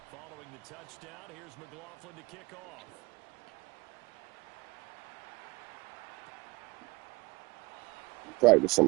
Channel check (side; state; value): left; quieter; 23.9 dB